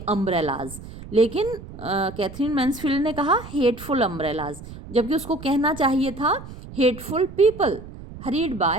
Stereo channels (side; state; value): right; noise; rumble, 14 dB below the sound